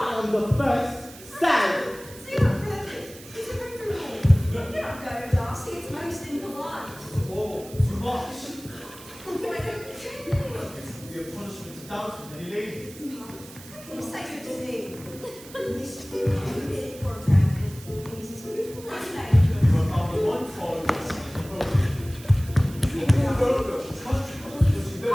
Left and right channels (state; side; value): noise; right; hiss, 18 dB below the sound